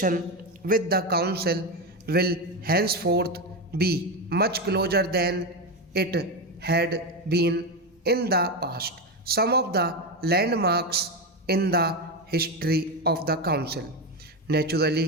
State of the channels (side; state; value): both; normal; correlation 0.14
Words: with the council will henceforth be much closer than it had been in the past. Some of the landmarks in the history of the council